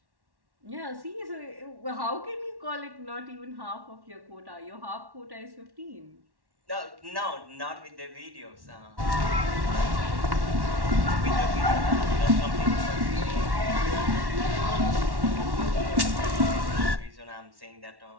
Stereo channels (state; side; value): late; left; 1.1 ms